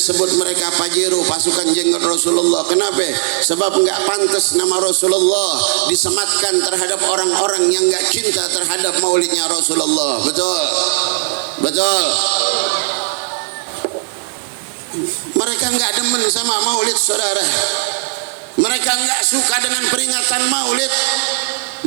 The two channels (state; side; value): silent; left; digital silence